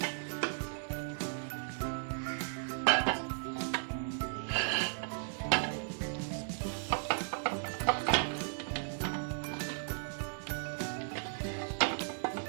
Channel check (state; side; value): silent; left; 54 dB below the other